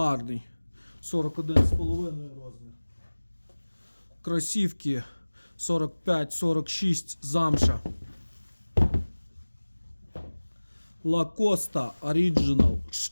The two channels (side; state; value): both; inverted; correlation -1.00